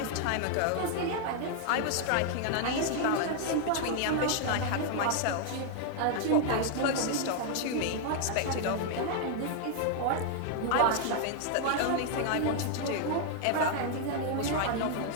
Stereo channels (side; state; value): both; different; correlation 0.00